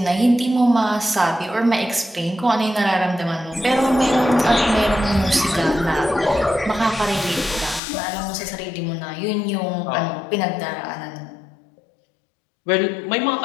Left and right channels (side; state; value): right; drops out; at 7.8 s